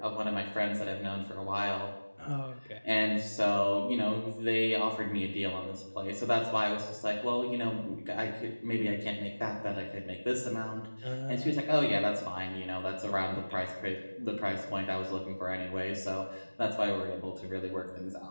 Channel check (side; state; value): both; inverted; correlation -1.00